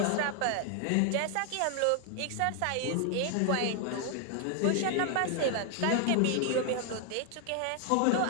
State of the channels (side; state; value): both; different; correlation 0.00